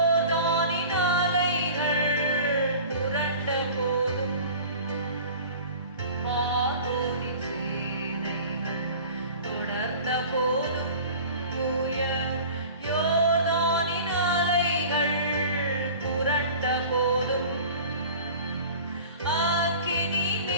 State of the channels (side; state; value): both; inverted; correlation -0.41